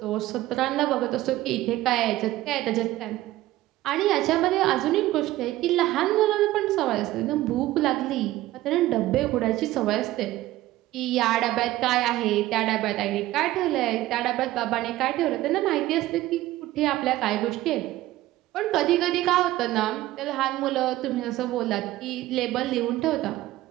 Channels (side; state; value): left; quieter; 16.0 dB